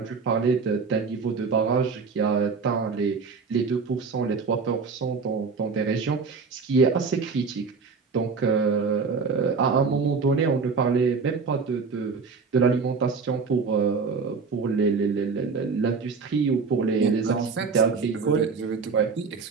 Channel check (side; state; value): left; quieter; 5.0 dB